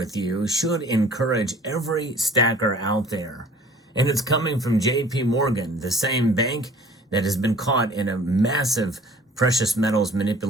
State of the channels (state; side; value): normal; both; correlation 0.50